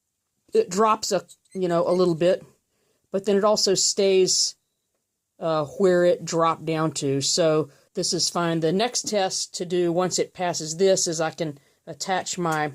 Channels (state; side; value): identical; both; correlation 1.00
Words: it drops a little bit, but then it also stays where it dropped down to. So this is fine. The next test to do once it passes this is I can attach my